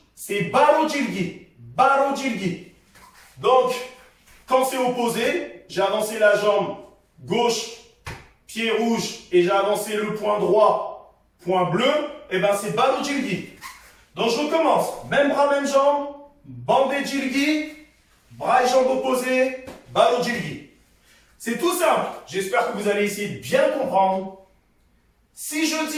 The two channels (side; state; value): both; identical; correlation 1.00